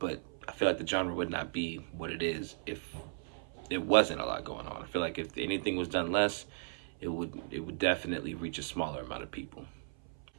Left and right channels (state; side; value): silent; left; 54 dB below the other